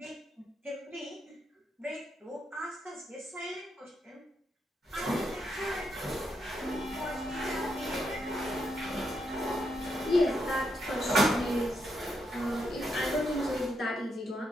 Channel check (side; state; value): both; normal; correlation 0.80